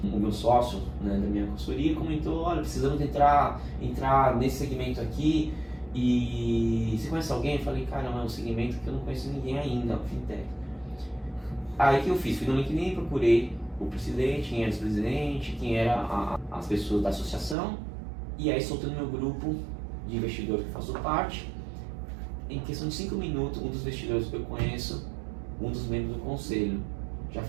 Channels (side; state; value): left; drops out; at 17.6 s